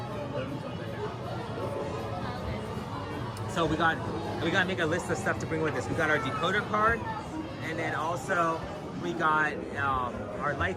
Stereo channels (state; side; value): identical; both; correlation 1.00